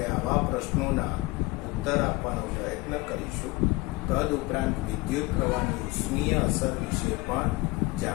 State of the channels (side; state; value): right; quieter; 23.1 dB